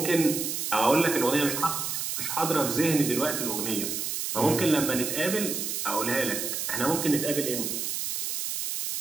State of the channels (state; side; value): noise; right; hiss, 2 dB below the sound